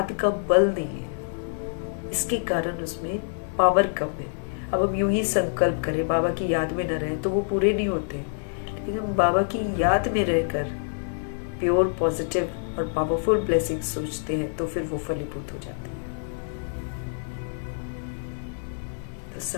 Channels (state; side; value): silent; right; digital silence